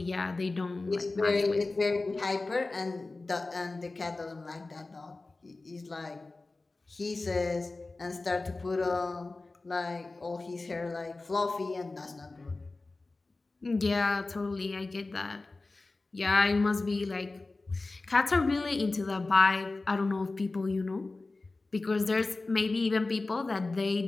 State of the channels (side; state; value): right; quieter; 3.4 dB